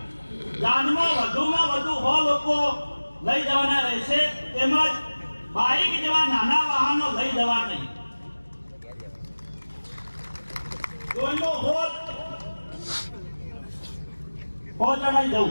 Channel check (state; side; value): inverted; both; correlation -1.00